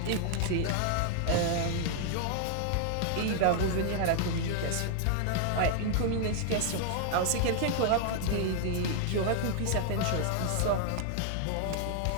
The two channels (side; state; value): both; different; correlation 0.00